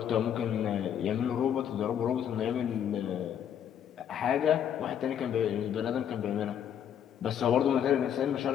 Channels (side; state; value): right; quieter; 9.2 dB